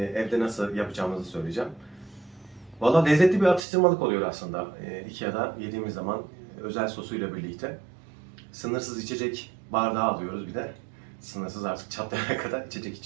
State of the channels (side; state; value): left; drops out; at 3.7 s